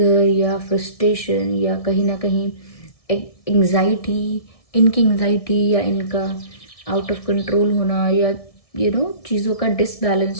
या फ्रस्ट्रेशन या कहीं ना कहीं एंग्जाइटी, इनकी एंग्जाइटी या इनका आउट ऑफ कंट्रोल होना, या चीज़ों का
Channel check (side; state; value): right; late; 1.6 ms